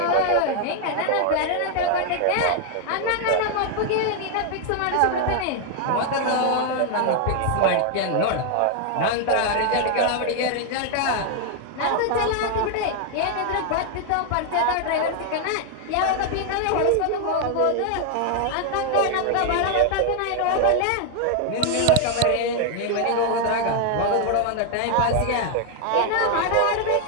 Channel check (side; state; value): both; different; correlation 0.00